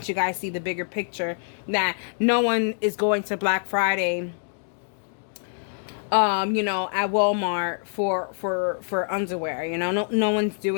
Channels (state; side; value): silent; right; digital silence